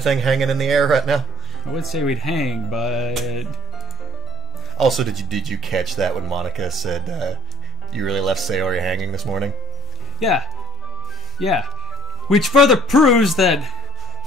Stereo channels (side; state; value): both; normal; correlation 0.54